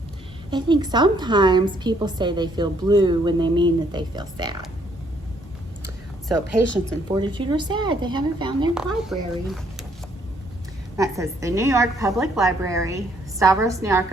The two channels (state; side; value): normal; both; correlation 0.67